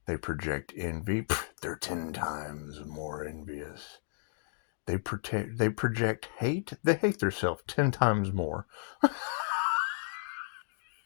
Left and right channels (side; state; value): right; silent; digital silence